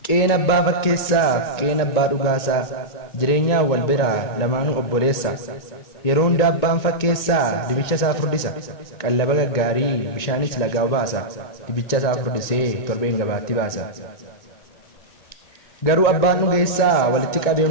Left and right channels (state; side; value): late; right; 2.2 ms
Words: qeen abbaa fakkeessaa qeen abbaa dhugaasaa jireenyaa wal biraa lamaanuu obboleessa yeroo hunda abbaan fakkeessaa dibicha isaa furdisa qallaba gaggaarii bishaanis lagaa baasa dibicha isaa furdisee torbeen gabaatti baasa garuu abbaan dhugeessaa walitti qabee